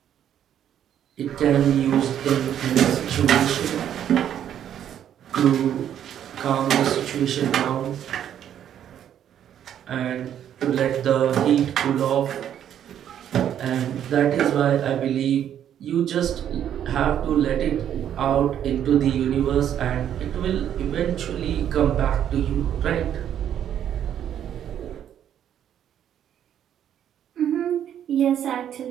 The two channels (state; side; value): quieter; left; 10.0 dB